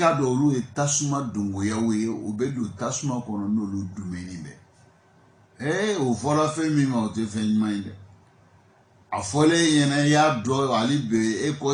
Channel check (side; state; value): both; identical; correlation 1.00